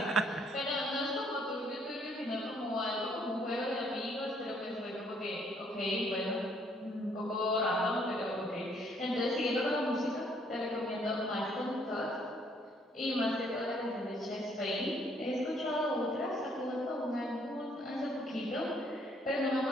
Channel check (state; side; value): normal; both; correlation 0.66